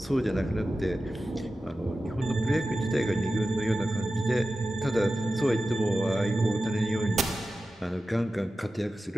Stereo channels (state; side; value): normal; both; correlation 0.93